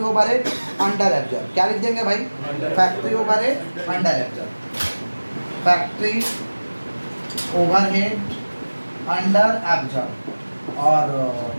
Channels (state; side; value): inverted; both; correlation -1.00